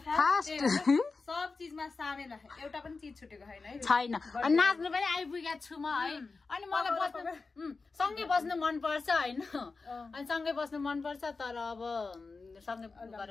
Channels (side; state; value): right; quieter; 4.1 dB